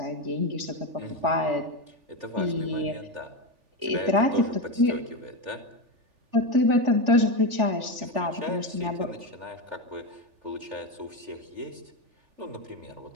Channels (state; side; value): late; left; 3.4 ms